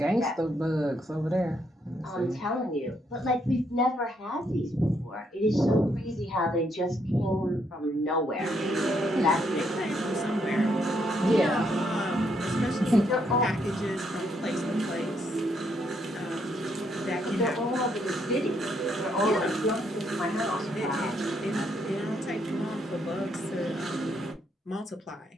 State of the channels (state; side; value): normal; both; correlation 0.74